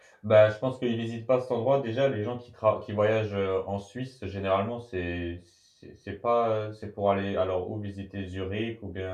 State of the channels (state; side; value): identical; both; correlation 1.00